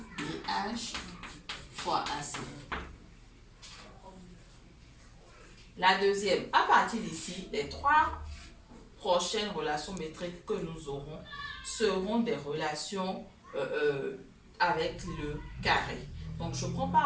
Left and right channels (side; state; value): both; identical; correlation 1.00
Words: BH fois AC. La deuxième, à partir d'ici, les trois prochaines relations métriques que nous aurons seront des relations avec le carré. Donc, je prends